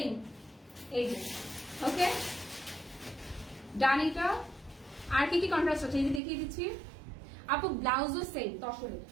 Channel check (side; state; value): left; drops out; at 6.2 s